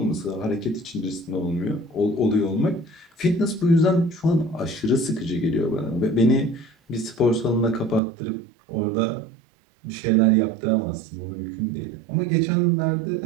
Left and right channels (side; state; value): left; drops out; at 8.0 s